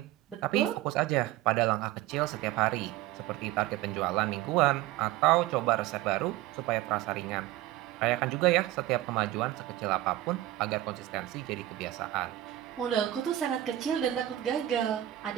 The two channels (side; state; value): left; quieter; 14.6 dB